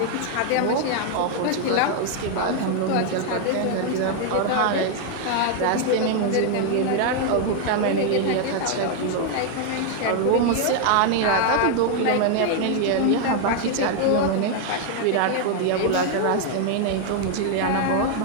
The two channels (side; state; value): both; different; correlation 0.00